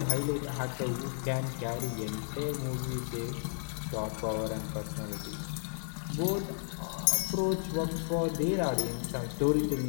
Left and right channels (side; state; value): right; silent; digital silence